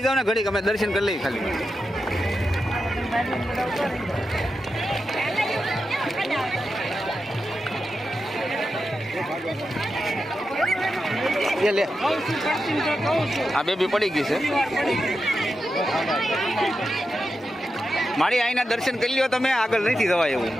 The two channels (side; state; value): both; normal; correlation 0.89